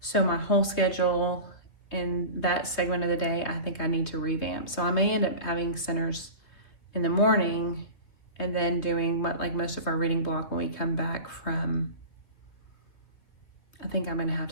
So my whole schedule in that segment of the day, I think I need to revamp. So I may end up having centers in the morning and then doing most of our reading block when we come back from, I think I'm gonna have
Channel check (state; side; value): late; right; 2.9 ms